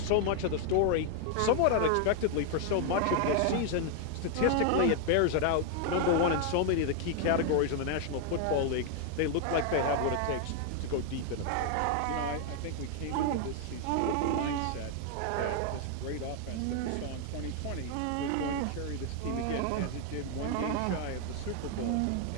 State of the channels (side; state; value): both; different; correlation 0.00